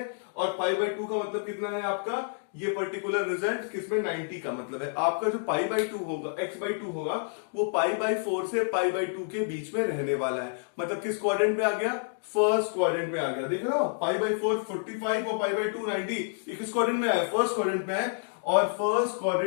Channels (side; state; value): right; silent; digital silence